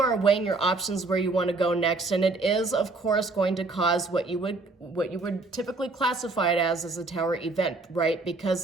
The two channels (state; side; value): quieter; left; 3.4 dB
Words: are weighing your options where you want to go next, and it is, of course, going to cause what you would typically classify it as a tower event, right?